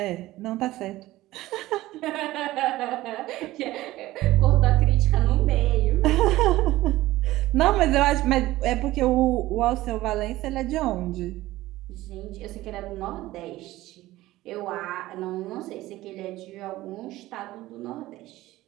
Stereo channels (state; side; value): quieter; left; 16.9 dB